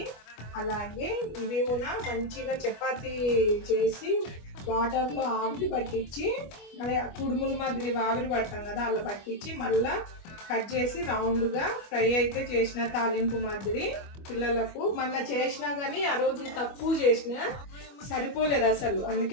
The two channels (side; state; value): right; late; 25 ms